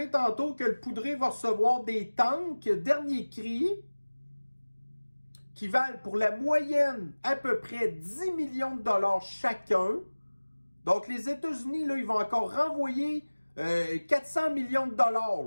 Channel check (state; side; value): inverted; both; correlation -1.00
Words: tantôt que le poudré va recevoir des tanks dernier cri qui valent pour la moyenne à peu près 10 millions de dollars chacun. Donc, les États-Unis, là, ils vont encore renvoyer 400 millions de dollars,